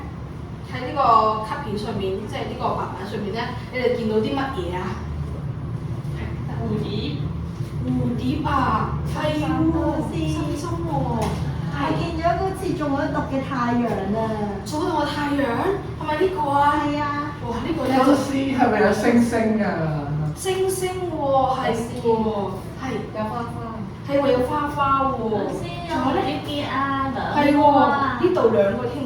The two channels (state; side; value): identical; both; correlation 1.00